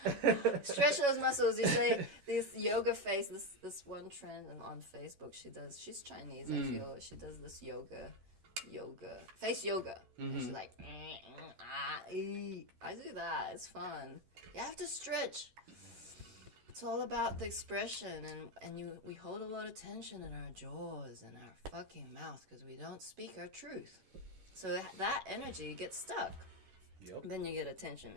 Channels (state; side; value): late; left; 11 ms